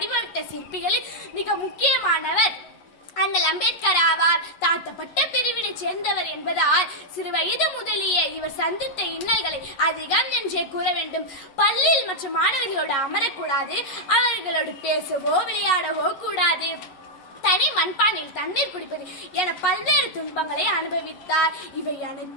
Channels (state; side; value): late; right; 11 ms